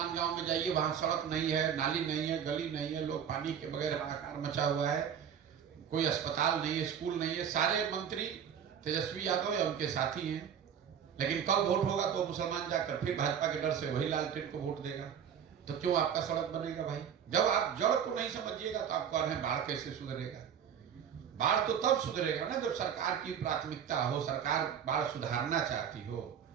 गांव में जाइए, वहां सड़क नहीं है, नाली नहीं है, गली नहीं है, लोग पानी के बगैर हाहाकार मचा हुआ है, कोई अस्पताल नहीं है, स्कूल नहीं है। सारे मंत्री तेजस्वी यादव या उनके साथी हैं, लेकिन कल वोट होगा तो मुसलमान जाकर फिर भाजपा के डर से वही लालटेन को वोट देगा। तो क्यों आपका सड़क बनेगा भाई? जब आप जड़ को नहीं समझिएगा तो आप कह रहे हैं बाढ़ कैसे सुधरेगा? बाढ़ तो तब सुधरेगा ना जब सरकार की प्राथमिकता हो, सरकार बाढ़ सुधारना चाहती हो।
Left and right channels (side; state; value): left; quieter; 8.3 dB